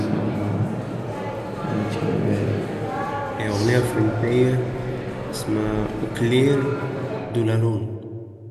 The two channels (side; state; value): both; identical; correlation 1.00